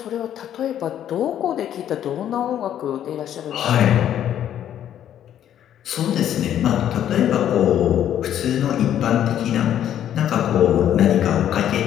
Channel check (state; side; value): quieter; right; 10.6 dB